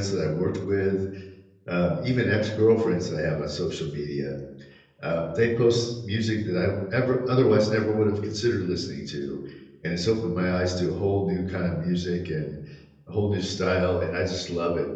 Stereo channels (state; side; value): identical; both; correlation 1.00